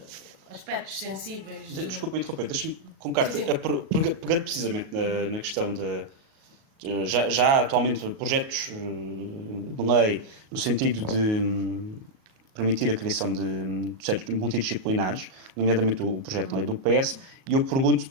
aspectos sensíveis. Desculpa interromper, deixa-me colocar-te, pegando precisamente na questão de já atualmente projetos de lei no sentido de permitir a criação de projetos multidisciplinares, nomeadamente o projeto de lei do PS, e eu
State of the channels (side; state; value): left; late; 38 ms